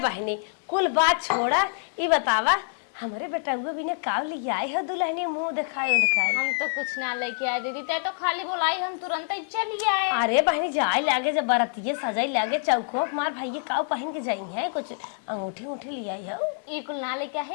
बहनी कुल बात छोड़ा ई बतावा हमारे बेटा हुए भी ने काव ले आए हो दुल्हनी मुंह दिखाए हम तो कुछ ना लेके आए दीदी ते तो खाली बोलाई हम तुरंत ही चली आए अरे बहनी जाए लागे जब बरतिये सजाई लागे चौको मार भाई काव पहन के जाई है कुछ अंगूठी उठी ले आई हो ये कुल ना लेके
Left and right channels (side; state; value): right; silent; digital silence